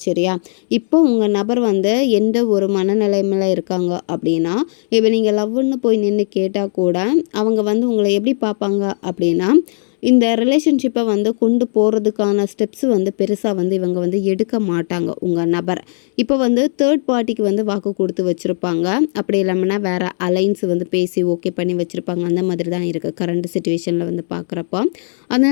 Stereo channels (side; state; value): right; silent; digital silence